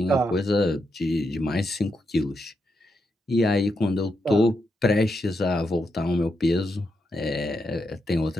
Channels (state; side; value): normal; both; correlation 0.83